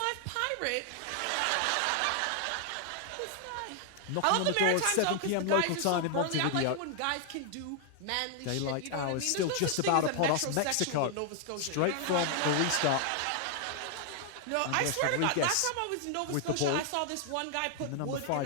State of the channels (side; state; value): both; different; correlation 0.00